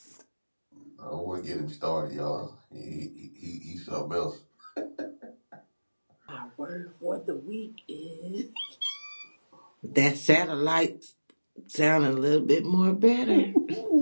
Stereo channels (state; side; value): inverted; both; correlation -1.00